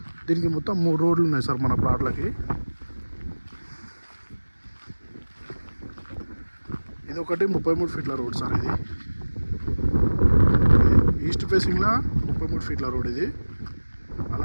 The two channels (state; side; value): inverted; both; correlation -1.00